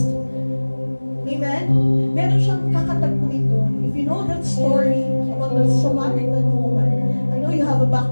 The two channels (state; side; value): inverted; both; correlation -1.00